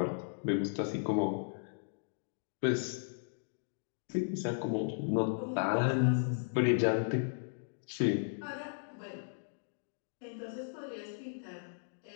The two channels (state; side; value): silent; right; digital silence